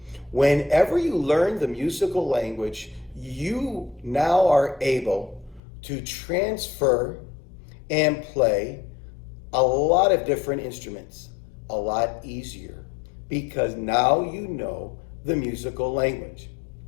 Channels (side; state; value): right; drops out; at 5.6 s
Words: Whenever you learn the musical language, you now are able to transfer and play a lot of different instruments a lot easier because now you know the musical language.